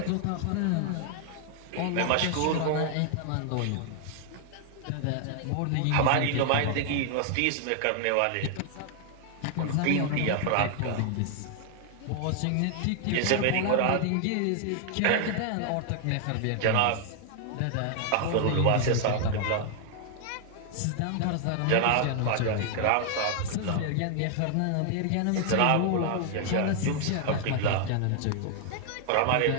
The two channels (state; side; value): different; both; correlation 0.00